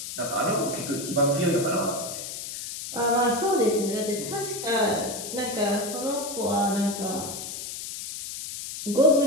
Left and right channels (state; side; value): noise; left; hiss, 8 dB below the sound